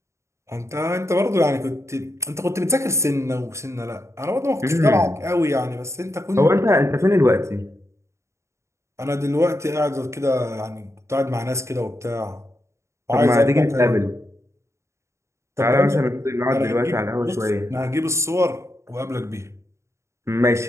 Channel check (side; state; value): left; late; 0.14 ms